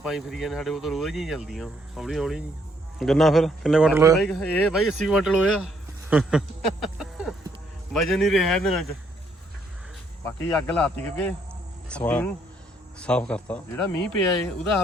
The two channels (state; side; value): normal; both; correlation 0.70